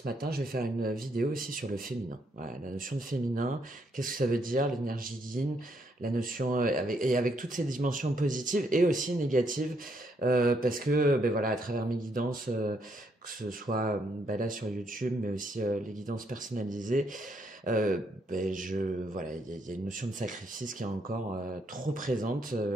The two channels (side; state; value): both; normal; correlation 0.74